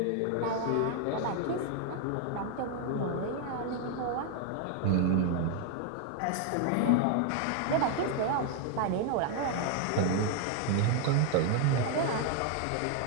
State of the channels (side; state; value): both; different; correlation 0.01